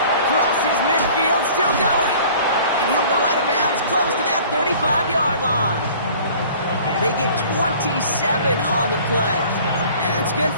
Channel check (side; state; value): both; inverted; correlation -0.48